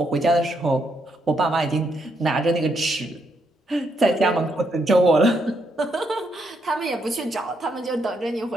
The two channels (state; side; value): normal; both; correlation 0.77